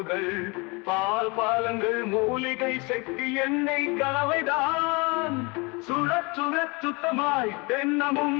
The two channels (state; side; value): quieter; right; 28.2 dB